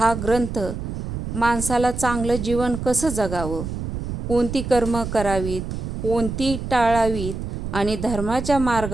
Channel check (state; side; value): noise; right; rumble, 6 dB below the sound